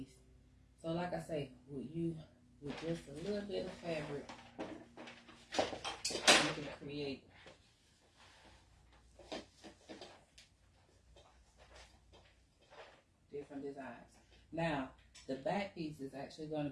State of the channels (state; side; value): identical; both; correlation 1.00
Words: So like I say, with just a little bit of fabric, you can create different designs. Now, the back piece is actually going